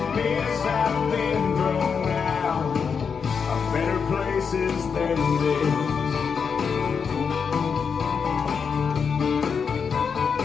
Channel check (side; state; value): right; quieter; 6.2 dB